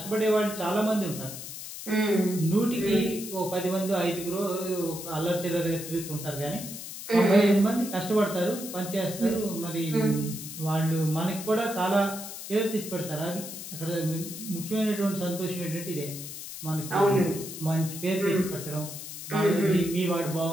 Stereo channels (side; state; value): left; noise; hiss, 10 dB below the sound